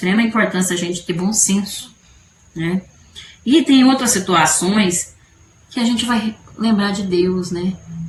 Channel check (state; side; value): identical; both; correlation 1.00